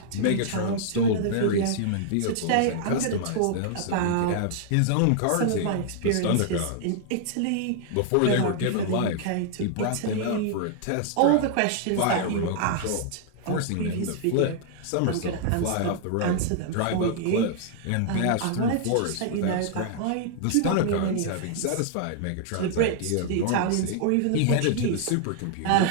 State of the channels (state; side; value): different; both; correlation -0.01